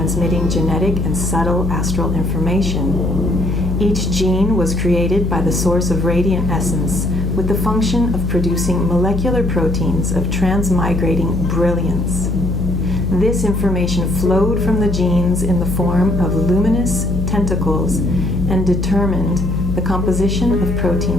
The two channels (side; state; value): left; noise; hum, 2 dB below the sound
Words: genetic and subtle astral information. Each gene was created by the source of radiant essence with the function of producing molecular proteins of transmigrating brilliance. This information flowed from the genes in the form of luminous tentacles and determined the composition of